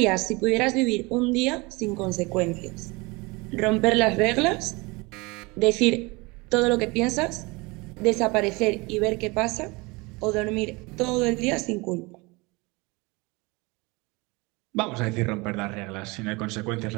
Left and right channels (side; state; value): left; quieter; 25.3 dB